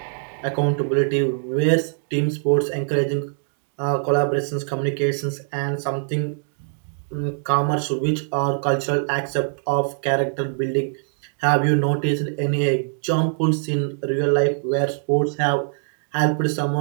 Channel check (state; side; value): silent; left; digital silence